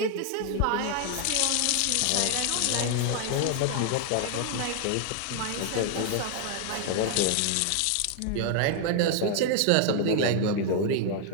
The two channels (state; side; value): different; both; correlation 0.00